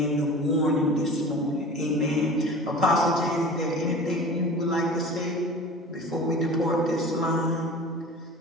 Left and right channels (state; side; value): normal; both; correlation 0.38